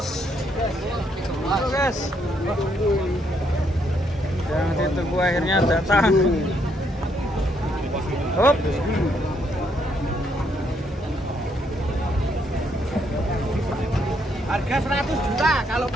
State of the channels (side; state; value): both; normal; correlation 0.73